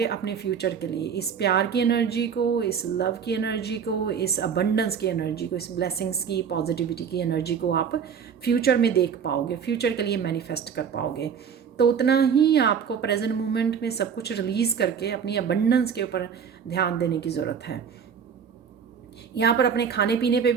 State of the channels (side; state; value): left; quieter; 7.1 dB